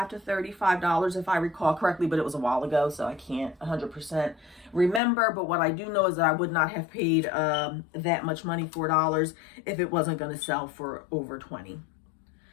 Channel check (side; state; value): right; drops out; at 5.0 s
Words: to $35 if I recall correctly, but it was a while ago, so I can't 100% remember. But what I do know is that I would not have paid that much money, $4, if it wasn't going to sell for over $20.